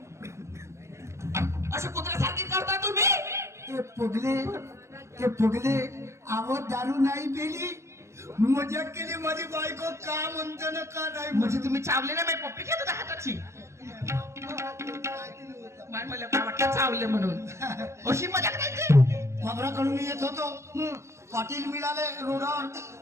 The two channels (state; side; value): late; left; 0.14 ms